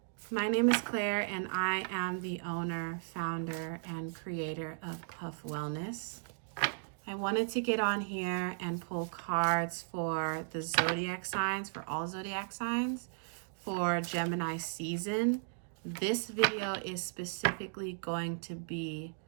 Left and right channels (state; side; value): silent; left; digital silence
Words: my name is Claire and I am the owner, founder, and creator of Puff Wellness. I wanted to get on here and pull cards for the zodiac signs, for all zodiac signs, for Gemini season. This video is specifically going to be